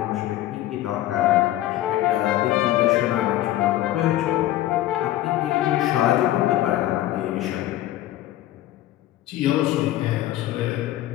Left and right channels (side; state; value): right; quieter; 14.3 dB